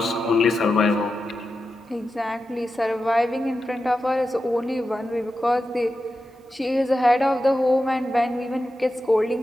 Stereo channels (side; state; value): both; normal; correlation 0.91